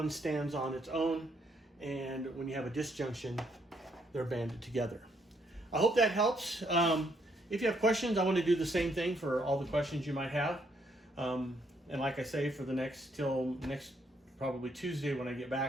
stands on its own, and when you have a disjunction, they're banded together. I hope that helps. If you have questions, I want to do the same thing for all the questions you might have. And like I say, for the till next probably Tuesday when I get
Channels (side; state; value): both; normal; correlation 0.72